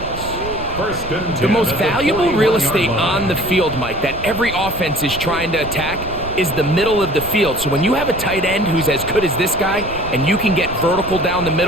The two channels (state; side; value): noise; right; rumble, 12 dB below the sound